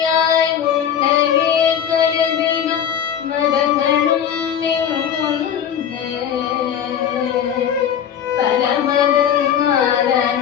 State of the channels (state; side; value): quieter; right; 8.9 dB